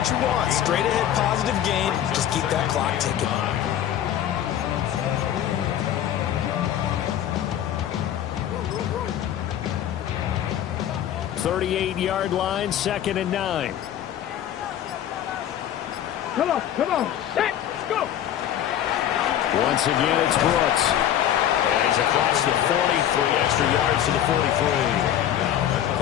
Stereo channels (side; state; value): right; quieter; 10.9 dB